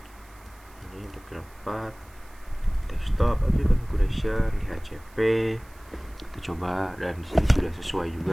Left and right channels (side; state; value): right; noise; hiss, 27 dB below the sound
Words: Ini untuk VLAN 4 desktop configuration DHCP. Kita coba dan di sini sudah sesuai